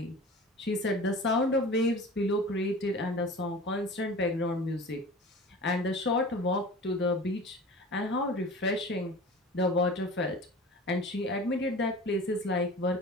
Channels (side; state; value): both; normal; correlation 0.38